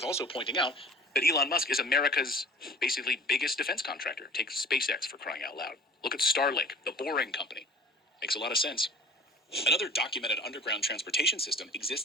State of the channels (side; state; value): both; normal; correlation 0.44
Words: also pointing out that Elon Musk is America's basically biggest defense contractor. Take SpaceX, for crying out loud. Look at Starlink, the Boring Company. Makes a lot of sense. Another documented underground transportation system